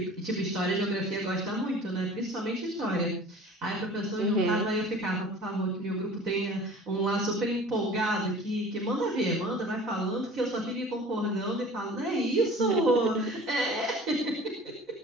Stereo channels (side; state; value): both; normal; correlation 0.44